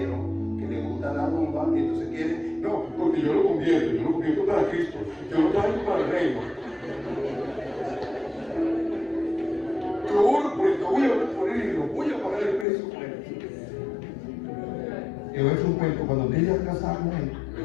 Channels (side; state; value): right; drops out; at 12.7 s